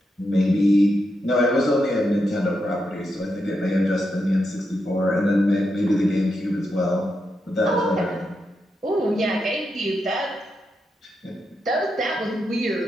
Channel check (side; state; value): both; normal; correlation 0.85